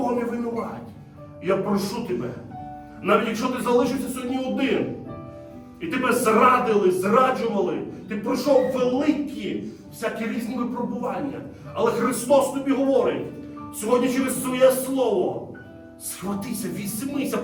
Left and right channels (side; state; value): both; identical; correlation 1.00